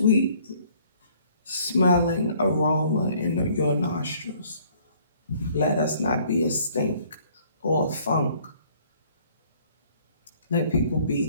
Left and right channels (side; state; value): both; inverted; correlation -0.59